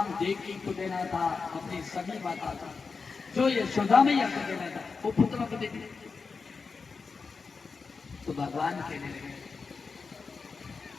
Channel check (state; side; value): quieter; right; 4.8 dB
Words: देवकी को देना था अपनी सभी माता का, जो यशोदा मैया को देना था वो पुत्र को दे दिया। तो भगवान कहने लगे,